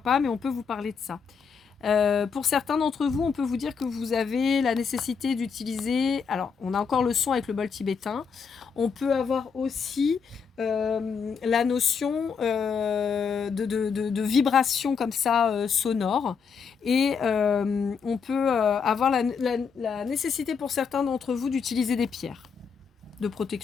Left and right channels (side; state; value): right; quieter; 6.0 dB